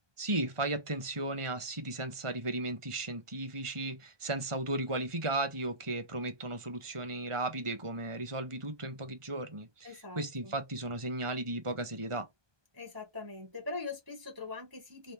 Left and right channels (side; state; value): left; late; 1.4 ms